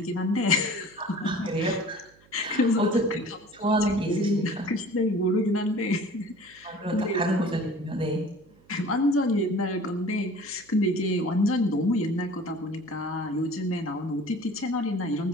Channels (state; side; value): noise; right; hum, 29 dB below the sound